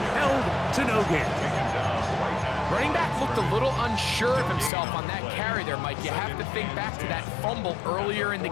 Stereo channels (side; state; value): right; drops out; at 4.7 s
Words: Held to no gain. Running back looked a little unsure of himself on that carry there, Mike. You have to think back to that fumble earlier in the